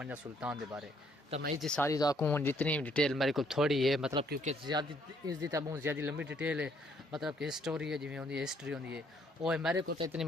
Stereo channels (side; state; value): both; normal; correlation 0.67